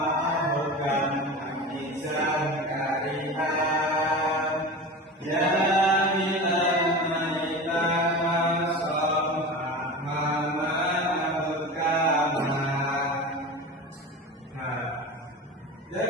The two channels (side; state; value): both; normal; correlation 0.30